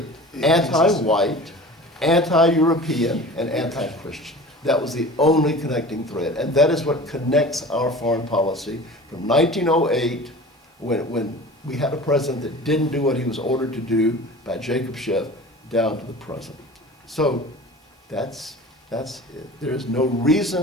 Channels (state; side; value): normal; both; correlation 0.39